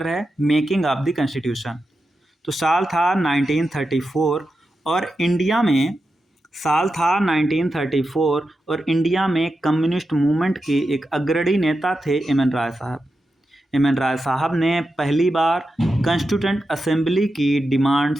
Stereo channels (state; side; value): normal; both; correlation 0.89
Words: है, मेकिंग ऑफ द कॉन्स्टिट्यूशन। तो साल था 1934 और इंडिया में कम्युनिस्ट मूवमेंट के एक अग्रणी नेता थे एम एन राय साहब। एम एन राय साहब ने पहली बार कॉन्स्टिट्यूएंट असेंबली की डिमांड